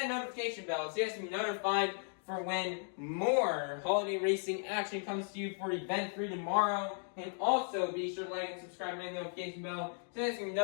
notification bell so you guys can be notified for when more holiday racing action comes to you for Event 3 tomorrow. And also be sure to like and subscribe and ring the notification bell so you guys can be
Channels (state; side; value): silent; right; 54 dB below the other